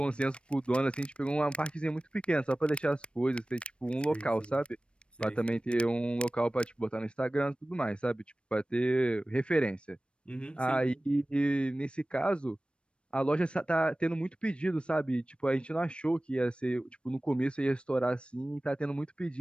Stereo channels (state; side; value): late; right; 0.058 ms